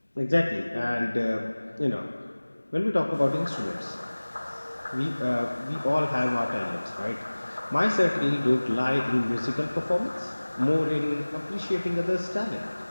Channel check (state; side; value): inverted; both; correlation -1.00